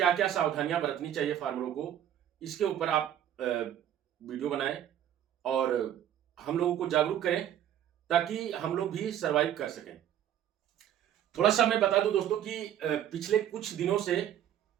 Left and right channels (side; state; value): left; quieter; 10.7 dB